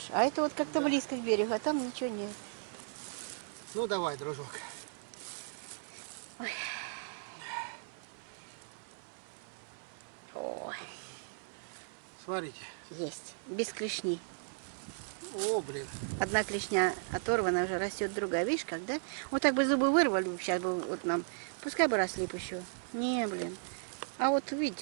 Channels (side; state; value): left; silent; 54 dB below the other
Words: А это вот как-то близко к берегу, а там ничего нет. Ну, давай, дружок. Ой, Смотрите. есть. Без клешни. О, блин. Одна клешня оторвана, уже растет другая. Видишь, как, да? Вот так бы зубы вырвали, сейчас бы вот нам. Пускай бы росли бы еще. Не, блин. А вот